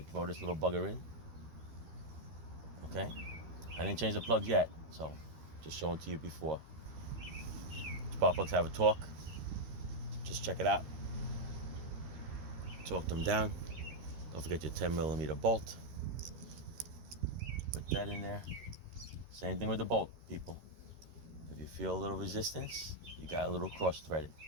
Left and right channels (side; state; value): left; late; 13 ms